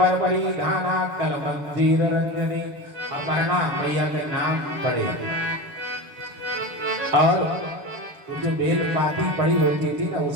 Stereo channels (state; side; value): late; left; 6.9 ms